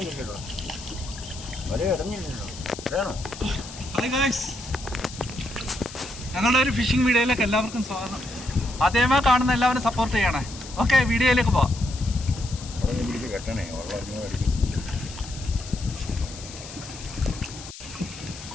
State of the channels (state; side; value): noise; left; hiss, 14 dB below the sound